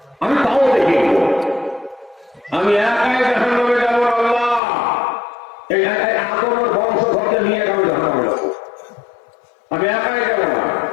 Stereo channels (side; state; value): right; drops out; at 4.6 s